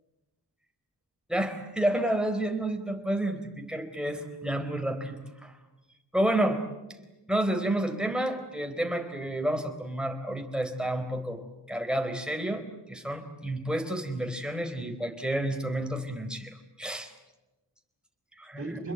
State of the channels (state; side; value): normal; both; correlation 0.79